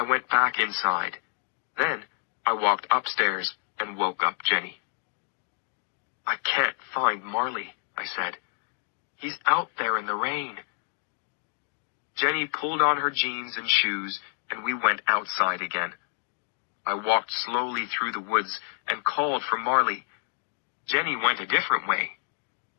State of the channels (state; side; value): silent; right; digital silence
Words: went back inside. Then I walked upstairs and woke up Jenny. "I can't find Marley," I said. "He's out there in the rain." Jenny pulled on her jeans and shoes, and we went outside again. I walked slowly through the woods and called for Marley. Jenny went a different way.